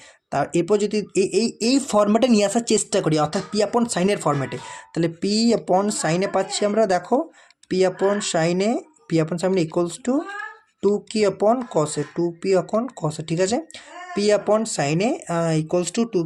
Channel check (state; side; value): identical; both; correlation 1.00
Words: তার এরপর যদি এই ফর্ম্যাটে নিয়ে আসার চেষ্টা করি, অর্থাৎ পি আপন সাইনের ফর্ম্যাটে, তাহলে পি আপন সাইনে পাচ্ছি আমরা, দেখো পি আপন সাইনে ইকুয়ালস টু 2q अपॉन कसे, 2p अपॉन कसे, ঠিক আছে। p upon sine A equals to